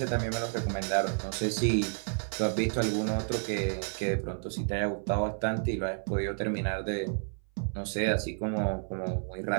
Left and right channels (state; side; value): silent; left; 56 dB below the other